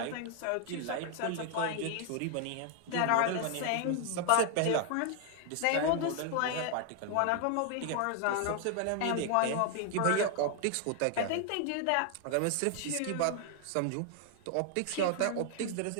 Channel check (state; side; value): different; both; correlation 0.00